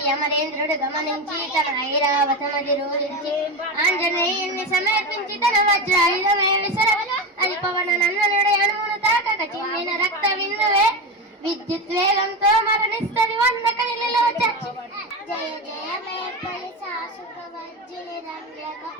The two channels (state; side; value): normal; both; correlation 0.19